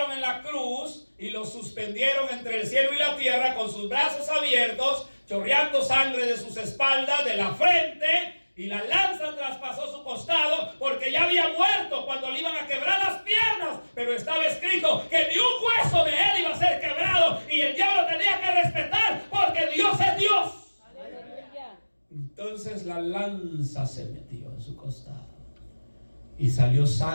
en la cruz y lo suspendieron entre el cielo y la tierra, con sus brazos abiertos, chorreando sangre de sus espaldas, de la frente, y la lanza traspasó su costado, porque ya había muerto cuando le iban a quebrar las piernas. Pero estaba escrito que ni un hueso de él iba a ser quebrado, y el diablo tenía que respetar, porque Dios es Dios. Entonces la lanza se metió en su costado y salió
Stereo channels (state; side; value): inverted; both; correlation -1.00